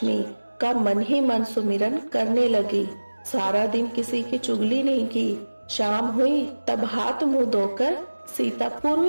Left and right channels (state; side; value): inverted; both; correlation -1.00